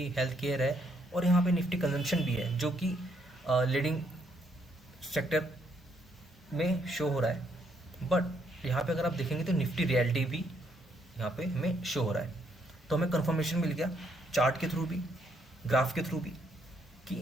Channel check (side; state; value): both; normal; correlation 0.72